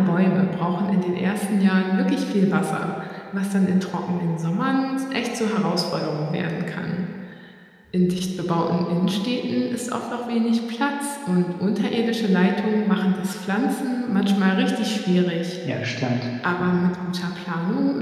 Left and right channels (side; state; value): both; identical; correlation 1.00